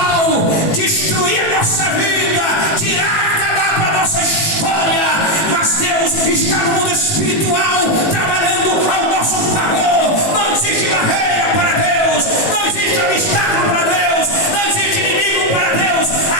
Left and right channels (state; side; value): late; right; 18 ms